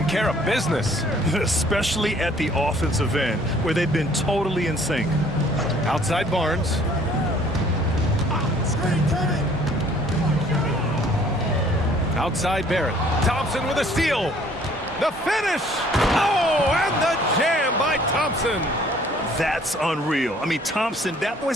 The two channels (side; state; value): both; normal; correlation 0.57